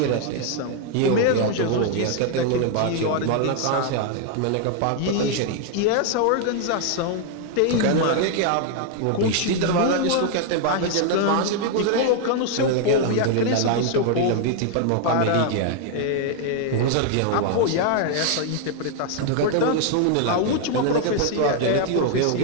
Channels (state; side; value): different; both; correlation 0.00